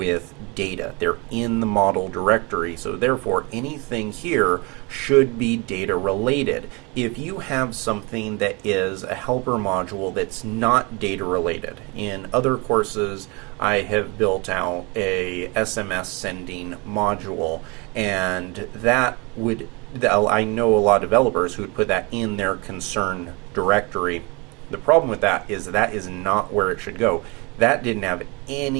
data. They're in the model directory, so therefore anything here should be data related. If you have something that is a helper module that's not data related, in other courses I have built out a SMS sending module, and I know a lot of developers who would put that in their concern directory. The problem with that is not where it should go. That didn't have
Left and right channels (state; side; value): quieter; left; 28.4 dB